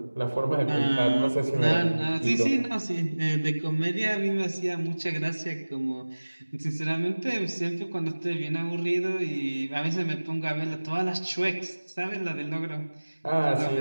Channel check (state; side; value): inverted; both; correlation -1.00